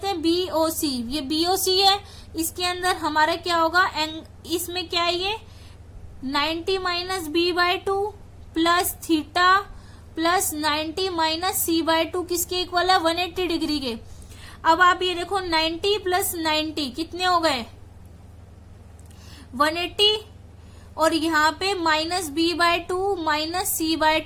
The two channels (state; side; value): identical; both; correlation 1.00